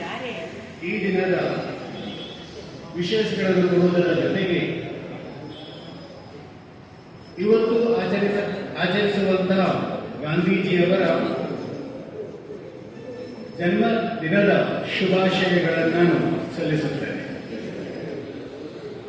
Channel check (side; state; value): both; identical; correlation 1.00